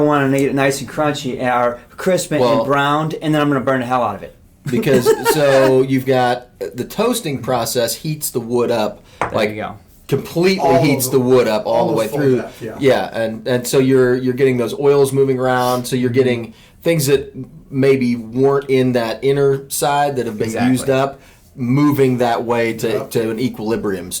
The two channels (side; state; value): both; identical; correlation 1.00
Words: to get it nice and crunchy or crisp and Well- browned, and then I'm going to burn the hell out of it? because so you've got the toasting process heats the wood up There you go. completely heats the wood up all the way almost full through. depth, yeah. Yeah, and so you're getting those oils moving around. So you're getting things that maybe weren't in that inner side that have been Exactly. used up, moving that way to an equilibrium